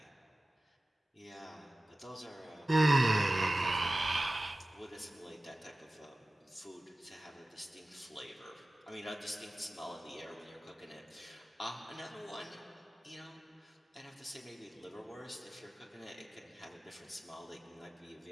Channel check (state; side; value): normal; both; correlation 0.96